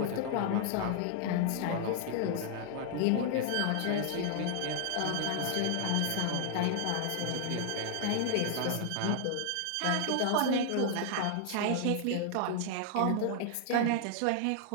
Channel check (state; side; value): different; both; correlation 0.00